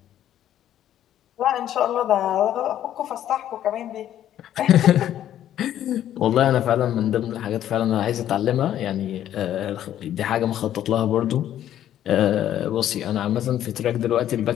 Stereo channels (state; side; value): quieter; right; 11.5 dB